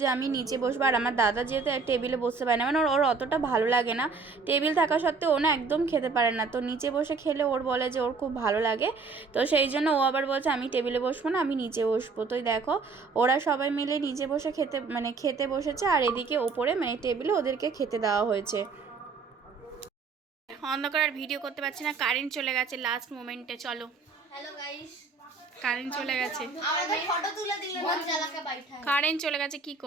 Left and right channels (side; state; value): left; quieter; 4.5 dB